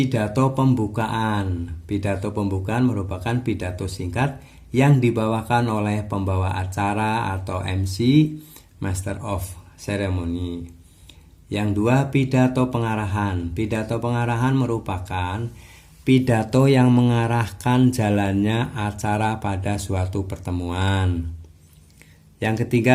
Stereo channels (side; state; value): both; identical; correlation 1.00